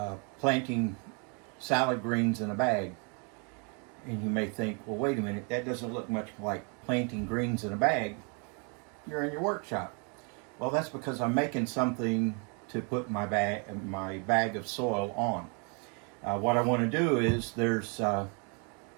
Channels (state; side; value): quieter; left; 36.3 dB